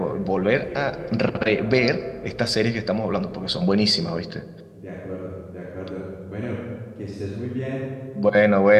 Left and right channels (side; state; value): both; identical; correlation 1.00